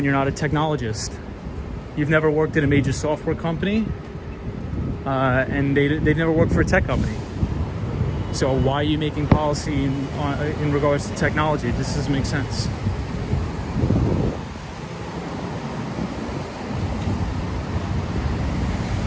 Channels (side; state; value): both; identical; correlation 1.00